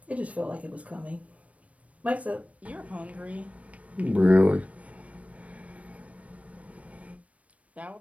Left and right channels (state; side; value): late; left; 0.065 ms